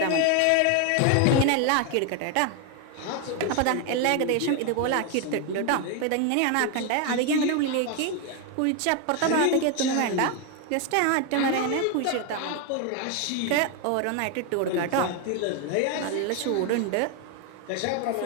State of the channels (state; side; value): different; both; correlation 0.01